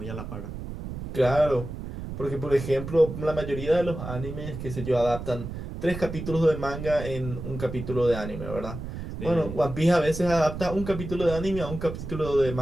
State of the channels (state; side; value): noise; right; rumble, 8 dB below the sound